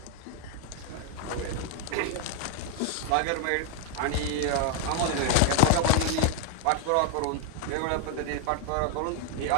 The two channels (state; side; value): different; both; correlation 0.00